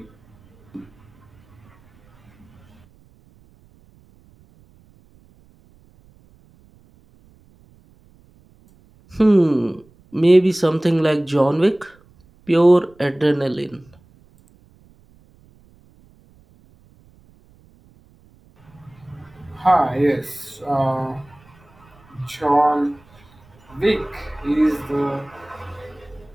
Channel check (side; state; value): right; noise; rumble, 29 dB below the sound